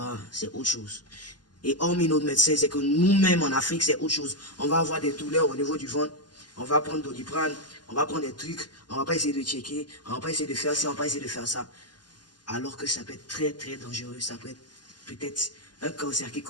c'est autre chose. Et hormis nos médecins, c'est que nous-mêmes en Afrique, c'est autre chose. On va avoir des douleurs au niveau du ventre, on va prendre Doliprane, on va prendre des trucs, on va pas essayer de checker, on va pas essayer de faire ça, on va pas essayer de faire ça. Alors que ça peut être très très dangereux, ça peut être peut-être un cancer qui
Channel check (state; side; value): late; right; 0.70 ms